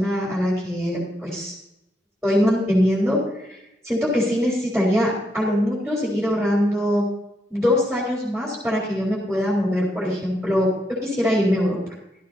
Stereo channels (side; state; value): both; normal; correlation 0.79